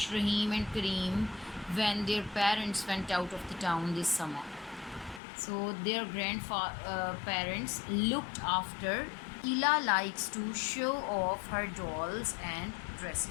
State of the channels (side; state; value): right; drops out; at 5.2 s